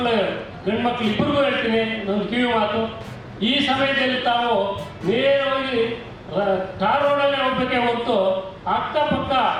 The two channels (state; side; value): identical; both; correlation 1.00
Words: ಗಂಡು ಮಕ್ಕಳು ಇಬ್ಬರಿಗೂ ಹೇಳ್ತೀನಿ ಒಂದು ಕಿವಿ ಮಾತು. ಈ ಸಮಯದಲ್ಲಿ ತಾವು ನೇರವಾಗಿ ಟಾರ್ ರೋಡಲ್ಲೇ ಹೋಗ್ಬೇಕೆ ಹೊರತು ಅಕ್ಕಪಕ್ಕ